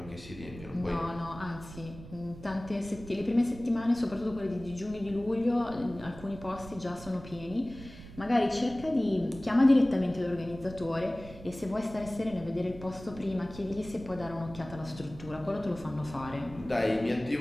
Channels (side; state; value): right; noise; rumble, 15 dB below the sound